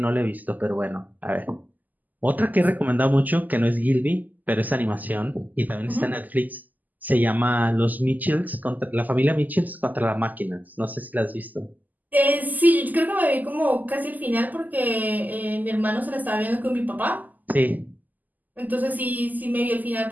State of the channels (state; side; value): late; left; 0.083 ms